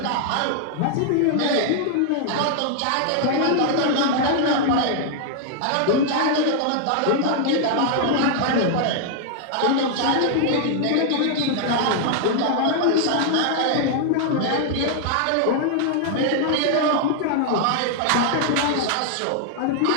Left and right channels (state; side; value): different; both; correlation 0.00